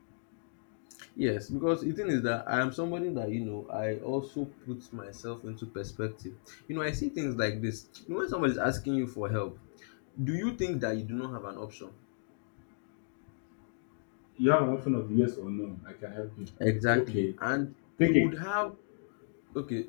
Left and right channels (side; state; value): right; silent; digital silence